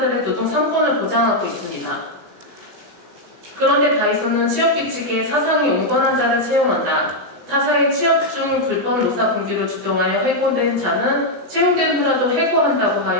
노동상권을 보장하고 있습니다. 그런데 다이소는 취업규칙에 사상이 온건한 자를 채용한다. 타사의 취업 중 불법 노사 분규를 주동하여 해고된 자는 채용된 후라도 해고한다고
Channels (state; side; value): late; left; 17 ms